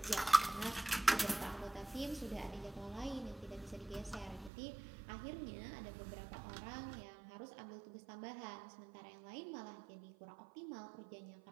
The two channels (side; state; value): left; drops out; at 4.5 s